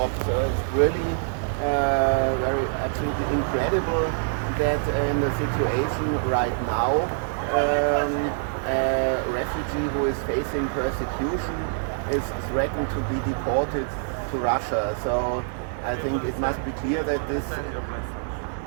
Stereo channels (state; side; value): silent; left; digital silence